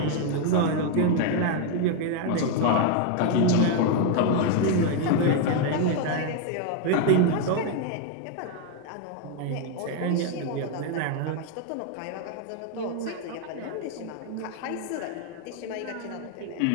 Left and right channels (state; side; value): different; both; correlation 0.01